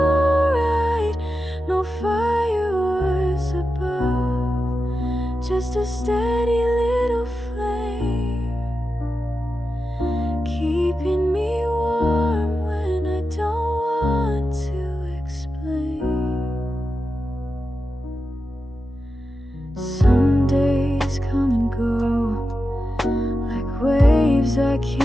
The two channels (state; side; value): normal; both; correlation 0.90